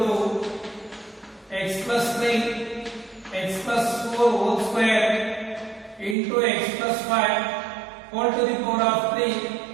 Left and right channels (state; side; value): drops out; left; at 6.2 s